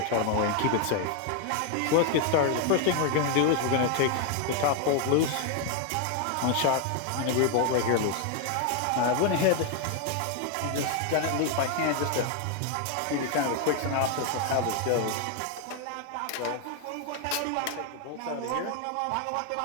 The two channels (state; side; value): different; both; correlation 0.01